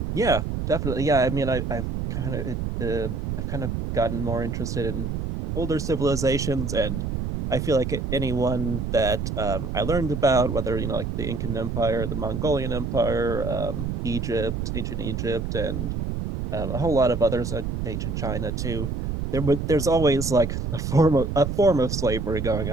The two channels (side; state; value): right; noise; rumble, 3 dB below the sound